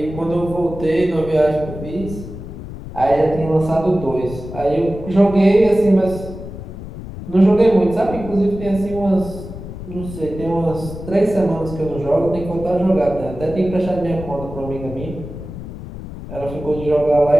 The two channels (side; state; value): left; noise; rumble, 11 dB below the sound